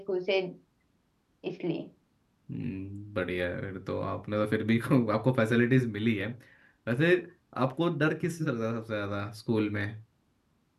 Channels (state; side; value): identical; both; correlation 1.00